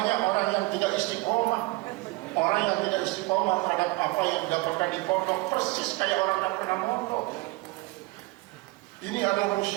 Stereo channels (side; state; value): left; quieter; 22.7 dB